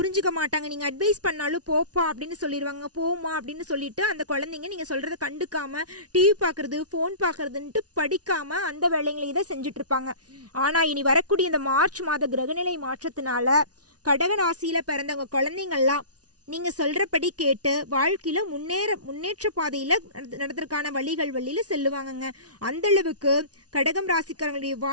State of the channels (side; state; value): left; late; 0.68 ms